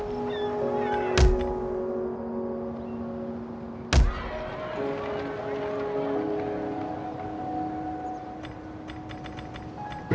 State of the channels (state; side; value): identical; both; correlation 1.00